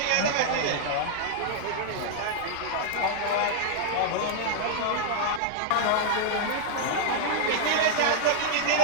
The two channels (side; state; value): both; different; correlation 0.00